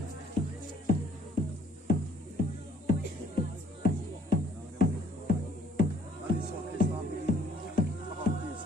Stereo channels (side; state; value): both; normal; correlation 0.60